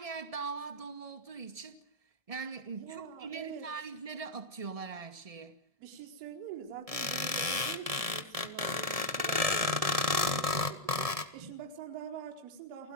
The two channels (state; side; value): late; left; 1.7 ms